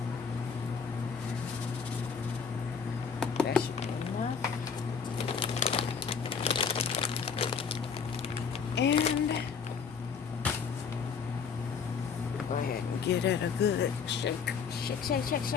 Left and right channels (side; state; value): right; quieter; 6.1 dB